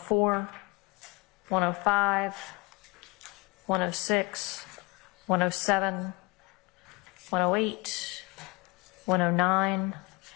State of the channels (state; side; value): quieter; right; 26.2 dB